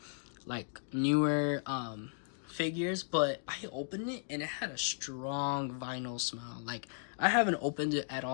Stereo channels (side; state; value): right; silent; digital silence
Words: figures, but I opened it and it had a strong vinyl smell. Like, I haven't opened it at